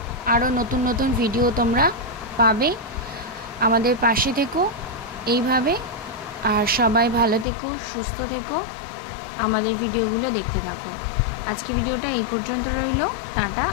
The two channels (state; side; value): drops out; right; at 7.5 s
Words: আরও নতুন নতুন ভিডিও তোমরা পাবে। আমাদের পাশে থেকো এইভাবে, আর সবাই ভালো থেকো, সুস্থ থেকো, আমাদের ভিডিওগুলো দেখতে থাকো। আজকে ভিডিওটা এই পর্যন্ত রইল, টাটা।